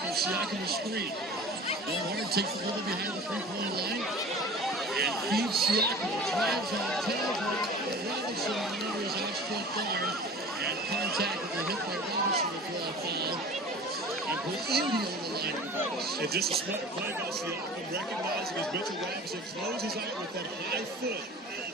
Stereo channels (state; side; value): normal; both; correlation 0.41